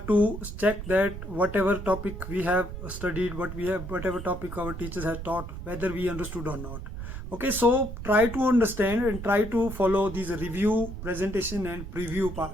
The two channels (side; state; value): right; noise; rumble, 9 dB below the sound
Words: to check that whatever topic we have studied, whatever topic our teachers have taught, whether we understood or not. Okay, so try to understand and try to follow these review, presentation and preview